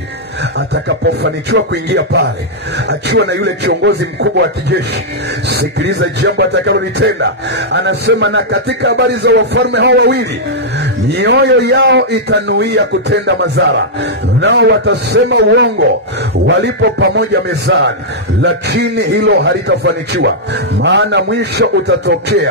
atakapofanikiwa kuingia pale akiwa na yule kiongozi mkubwa wa kijeshi, sikiliza jambo atakalolitenda. Anasema na katika habari za wafalme hao wawili, mioyo yao itanuia kutenda madhara, nao watasema uongo walipo pamoja mezani, lakini hilo halitafanikiwa, maana mwisho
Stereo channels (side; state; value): both; normal; correlation -0.08